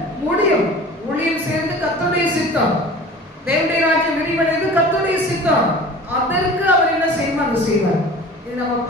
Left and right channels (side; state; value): both; normal; correlation 0.41